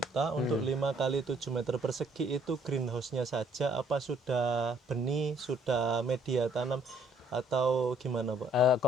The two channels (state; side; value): normal; both; correlation 0.64